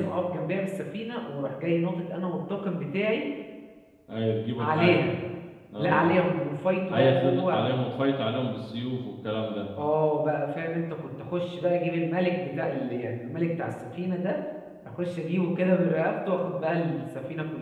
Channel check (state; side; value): identical; both; correlation 1.00